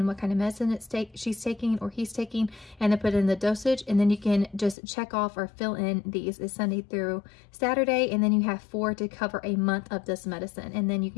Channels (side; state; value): right; drops out; at 4.8 s